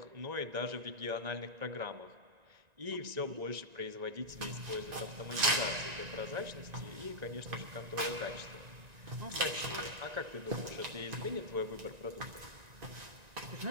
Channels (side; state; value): left; late; 1.9 ms